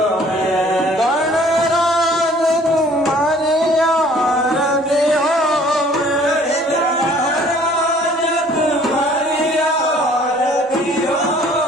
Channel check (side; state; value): both; normal; correlation 0.55